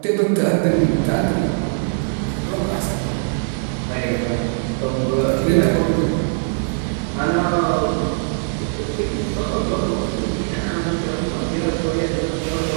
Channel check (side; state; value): left; silent; 65 dB below the other